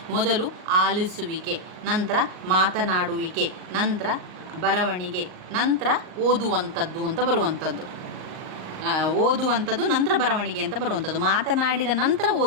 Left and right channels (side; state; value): left; late; 38 ms